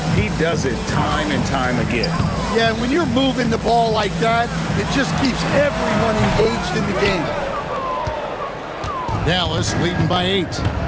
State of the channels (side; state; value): both; identical; correlation 1.00